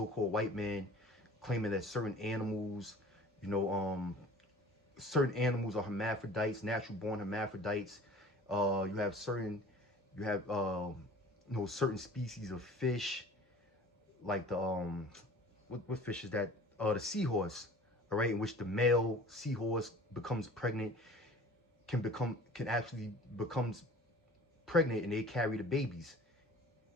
white man claiming that you know, certain animals are hermaphrodites, natural born hermaphrodites. You have certain species of fish, like the what fish is that? The seahorse, all right, in which the male seahorse becomes pregnant, can actually becomes pregnant, and they carry the babies,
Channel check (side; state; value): both; normal; correlation 0.44